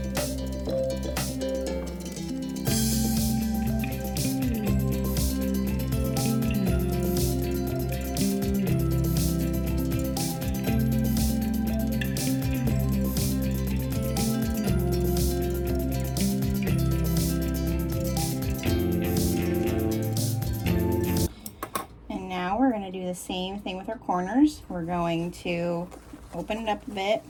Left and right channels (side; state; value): both; identical; correlation 1.00